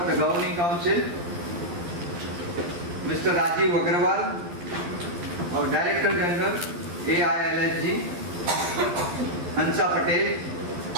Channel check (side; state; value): left; late; 12 ms